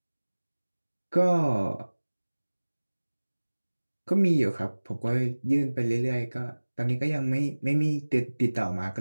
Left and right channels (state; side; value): inverted; both; correlation -1.00